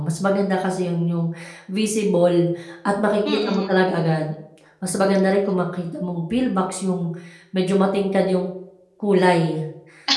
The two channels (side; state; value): both; identical; correlation 1.00